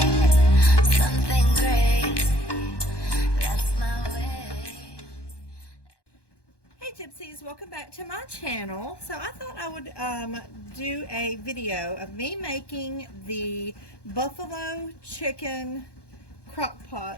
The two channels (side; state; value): right; late; 1.2 ms